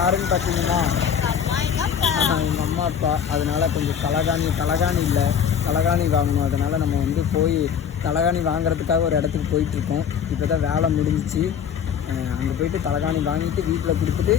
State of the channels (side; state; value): right; quieter; 7.9 dB